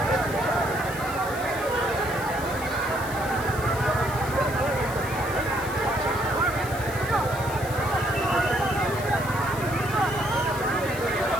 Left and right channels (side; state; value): left; noise; hiss, 14 dB below the sound